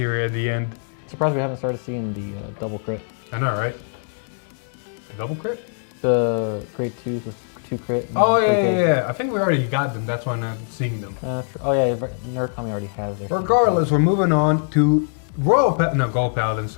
at the end. Surprised we haven't started seeing the double crit. I know, right? A double crit? The grade 2s with 2 crit. and Oh, 3K. yeah. I think we already got them. That's why I'm not seeing them. Oh yeah, Narukami already has their. Regardless, we're moving on to Gold Paladin,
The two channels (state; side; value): silent; right; digital silence